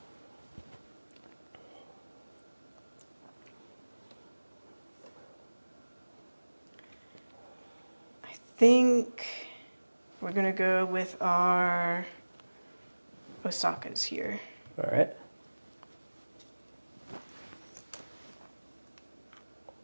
I think we're gonna go with our Osakas here. All right.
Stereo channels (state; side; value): inverted; both; correlation -1.00